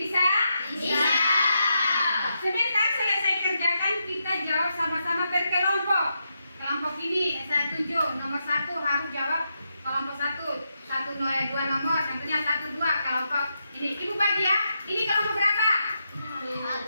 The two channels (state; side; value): inverted; both; correlation -0.84